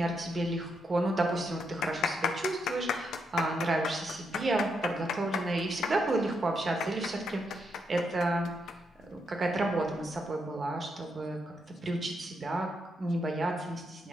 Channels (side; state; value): both; normal; correlation 0.80